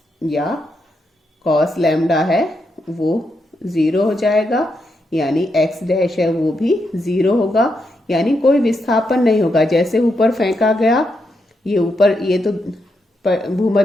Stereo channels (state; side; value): normal; both; correlation 0.82